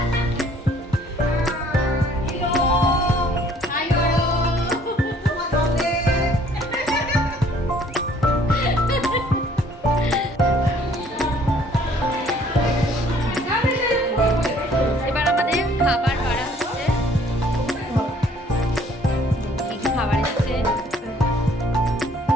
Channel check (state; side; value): normal; both; correlation 0.59